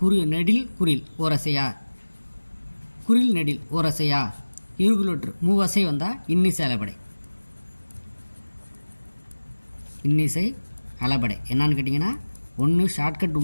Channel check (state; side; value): inverted; both; correlation -1.00